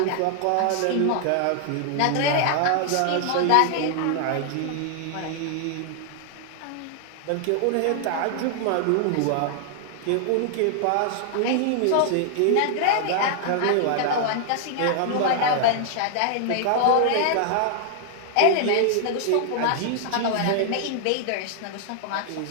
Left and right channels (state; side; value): different; both; correlation 0.00